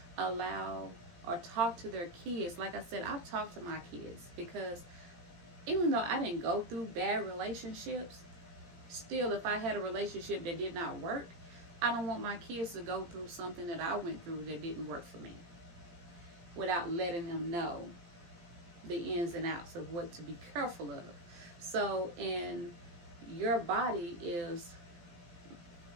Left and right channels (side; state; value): left; late; 17 ms